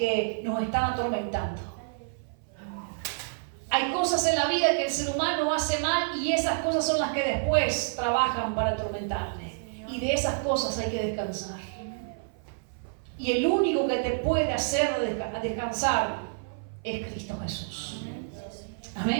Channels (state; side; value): silent; left; 56 dB below the other